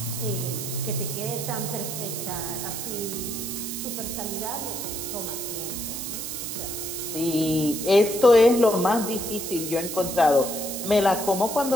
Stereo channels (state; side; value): noise; right; hiss, 6 dB below the sound